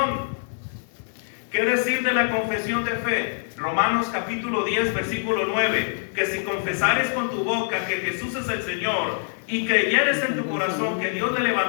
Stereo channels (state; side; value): silent; right; digital silence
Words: ¿Qué decir de la confesión de fe? Romanos capítulo 10, versículo 9: que si confesares con tu boca que Jesús es el Señor y creyeres en tu corazón que Dios le